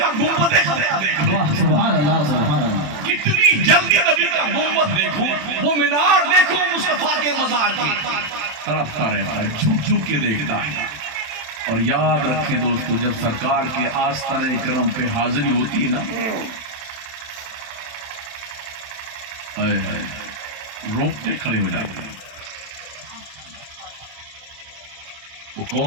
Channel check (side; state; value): left; late; 27 ms